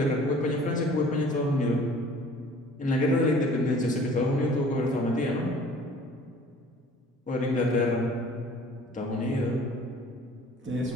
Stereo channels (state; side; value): normal; both; correlation 0.50